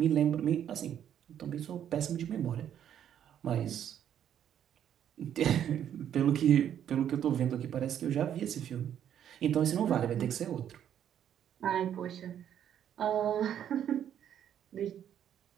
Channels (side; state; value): left; quieter; 9.8 dB